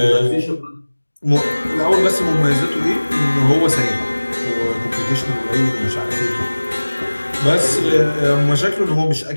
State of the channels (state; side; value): inverted; both; correlation -1.00